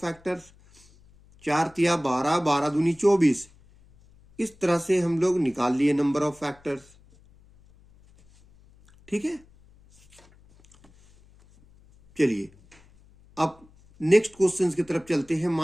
फैक्टर्स। 4 तिया 12, 12 दूनी 24। इस तरह से हम लोग निकाल लिए नंबर ऑफ फैक्टर्स। ठीक है, चलिए अब नेक्स्ट क्वेश्चन की तरफ चलते हैं।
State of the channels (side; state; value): left; noise; hum, 28 dB below the sound